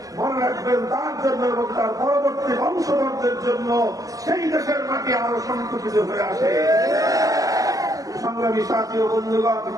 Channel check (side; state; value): left; late; 0.17 ms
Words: মনে রাখবেন তার জন্য এবং তার পরবর্তী বংশধরদের জন্য সেই দেশের মাটি আরো সংকুচিত হয়ে আসে। সংগ্রামী সাথী ও বন্ধুগণ,